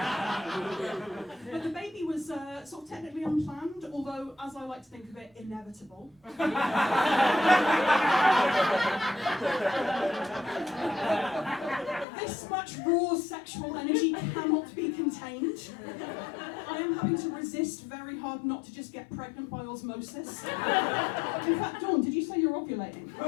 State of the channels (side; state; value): right; drops out; at 12.1 s